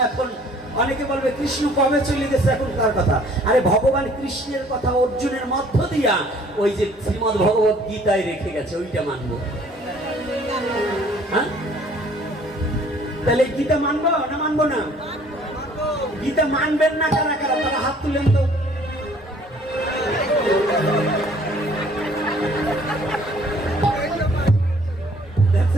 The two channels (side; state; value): both; normal; correlation 0.56